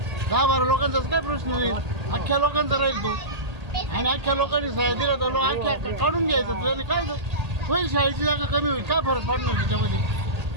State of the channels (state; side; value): late; left; 1.8 ms